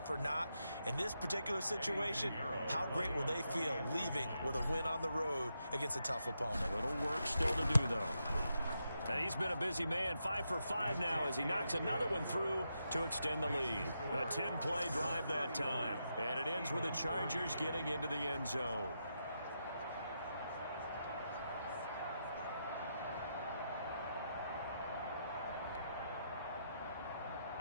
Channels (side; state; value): both; inverted; correlation -0.84